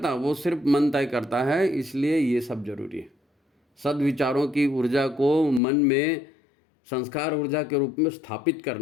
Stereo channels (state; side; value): drops out; right; at 5.6 s